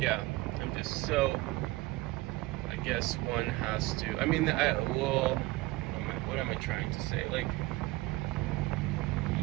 I'm just so, I guess one has to, what am I trying to say? Like,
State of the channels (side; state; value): left; quieter; 20.2 dB